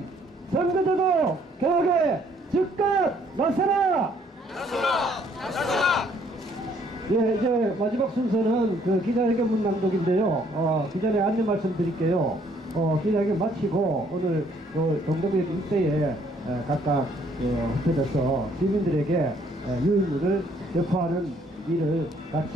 선거제도 개혁에 즉각 나서라! 예, 이제 마지막 순서는 기자회견문 낭독인데요. 기자님 안내 말씀드릴게요. 기자회견 마치고 오늘 동대문 일대에 각각 흩어져서 시민들에게 유인물을 배포하는 일을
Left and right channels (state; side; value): normal; both; correlation 0.64